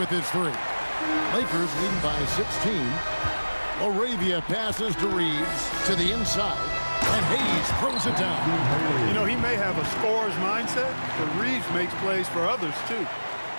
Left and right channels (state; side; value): inverted; both; correlation -1.00